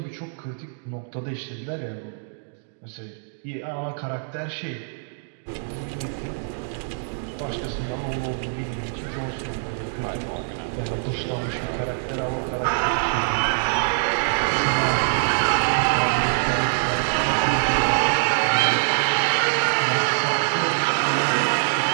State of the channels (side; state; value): left; silent; digital silence